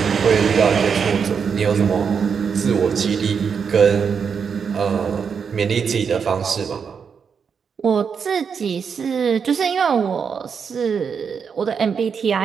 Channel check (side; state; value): left; quieter; 6.4 dB